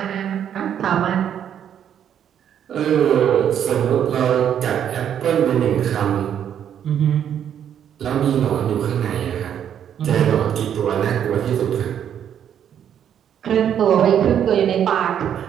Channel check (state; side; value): quieter; left; 9.3 dB